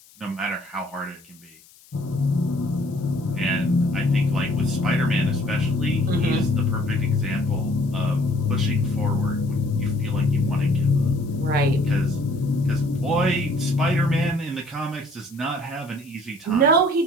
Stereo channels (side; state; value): left; noise; hiss, 26 dB below the sound